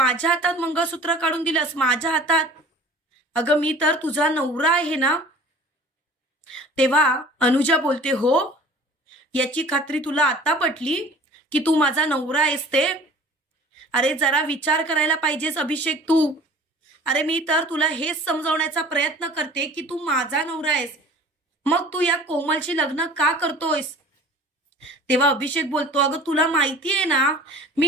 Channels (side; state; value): both; normal; correlation 0.45